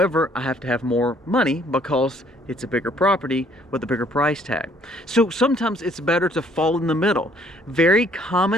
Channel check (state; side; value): normal; both; correlation 0.62